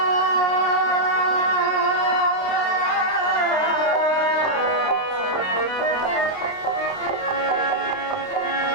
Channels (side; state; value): right; late; 28 ms